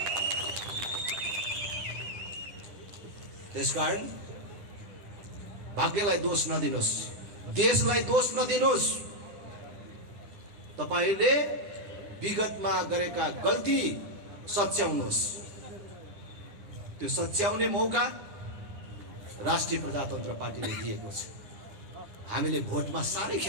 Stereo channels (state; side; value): late; left; 9.9 ms